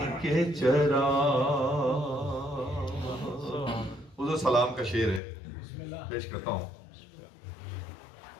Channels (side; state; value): right; drops out; at 5.2 s